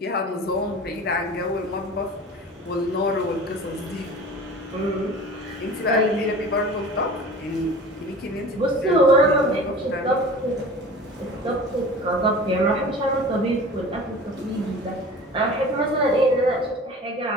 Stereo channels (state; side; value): normal; both; correlation 0.40